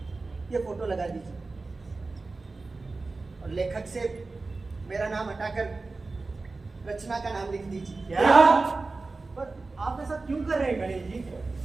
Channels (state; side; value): quieter; left; 3.6 dB